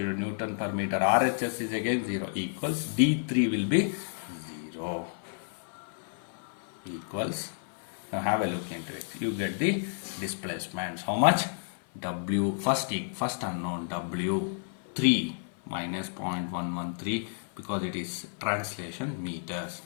Newton per meter. RHS is again 0, equals D3 will be 0, equals, now have a look into it. You get the displacements. How much? W, first unknown, W3 minus 0.113, because it is translation meters.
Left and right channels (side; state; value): right; silent; 55 dB below the other